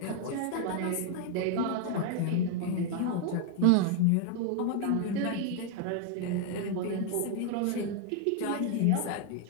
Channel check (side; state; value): both; different; correlation 0.01